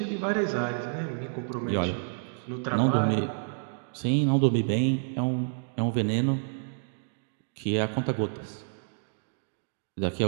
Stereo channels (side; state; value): left; silent; digital silence